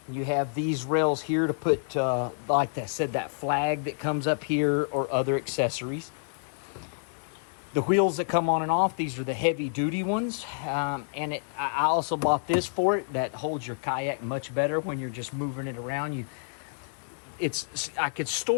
You have these rails here to put, like I said, that flag that comes up here, or other accessories. The wheels that come on and off, these are the heavy duty ones. And I also bought this for it that holds your kayak much better when you're just moving it around. I could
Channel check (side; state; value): right; silent; digital silence